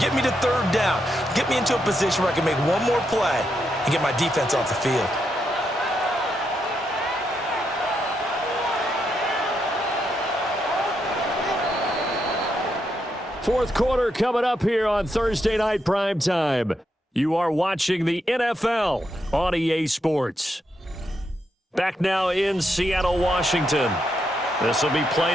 get me to 3rd down. Get me into a position where I can make one more play and get my defense off the field. Fourth quarter coming up here on Thursday Night Primetime. You are watching the NFL on EA Sports. Back now in Seattle, Washington. This will be play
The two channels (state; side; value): normal; both; correlation 0.81